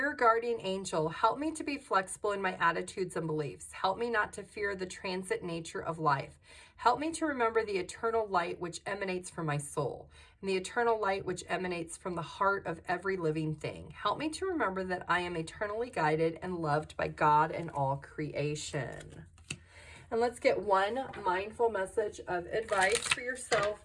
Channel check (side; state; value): both; identical; correlation 1.00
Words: guardian angel, help me to be flexible in my attitudes and beliefs. Help me not to fear the transit nature of life. Help me to remember the eternal light which emanates from my soul, and the eternal light which emanates from the heart of every living thing. Help me to remember that I am eternally guided and loved by God and all creation. And let's get one mindful message of advice for yourself,